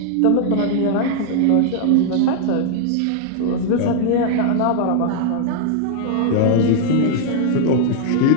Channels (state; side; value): different; both; correlation -0.01